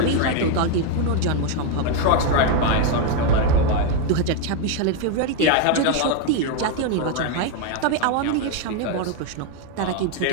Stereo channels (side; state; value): both; different; correlation 0.01